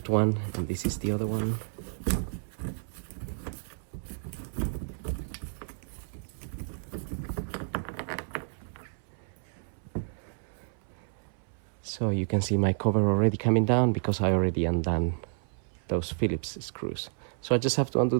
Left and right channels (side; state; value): left; silent; 57 dB below the other